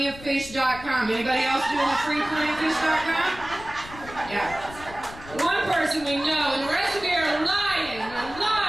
Anybody else doing the free plentyoffish.com? Yeah. One person we know, and the rest of you are lying. You're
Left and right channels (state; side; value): noise; left; rumble, 16 dB below the sound